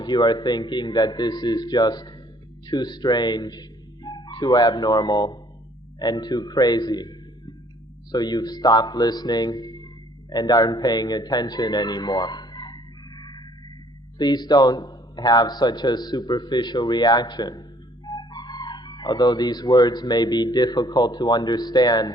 you are thinking that this is just too strange, too abnormal, and too crazy. So you've stopped listening and aren't paying attention anymore. Please don't have such a superficial reaction. Although these words may be difficult to understand,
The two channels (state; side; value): normal; both; correlation 0.60